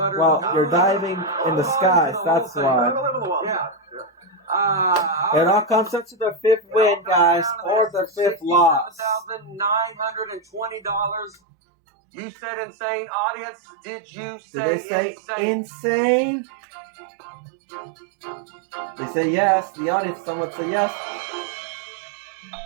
Well, you're diving in the skies. That's why. Yeah. It all comes up to the 5th win, guys, or the 5th loss. $67,920. You said insane. Audience, did you say Did they say insane? insane? They say yes. The audience, someone say yes.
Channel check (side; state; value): left; drops out; at 11.4 s